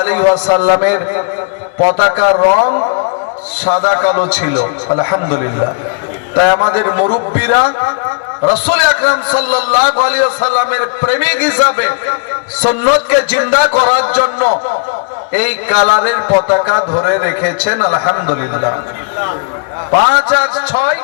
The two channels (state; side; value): quieter; right; 35.7 dB